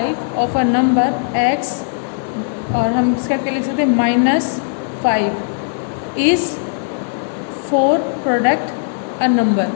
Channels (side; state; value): right; silent; digital silence